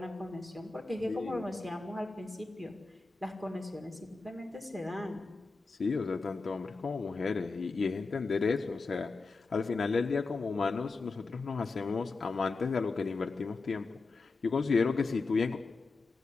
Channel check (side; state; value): right; quieter; 3.9 dB